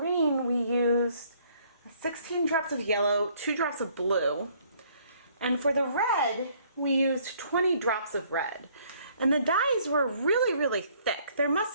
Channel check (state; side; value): inverted; both; correlation -0.62